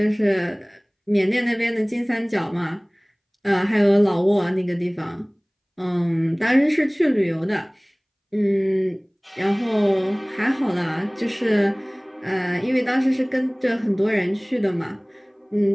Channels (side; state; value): both; identical; correlation 1.00